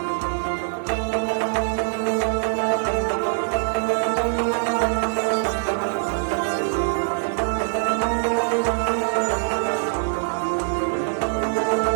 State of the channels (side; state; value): left; silent; digital silence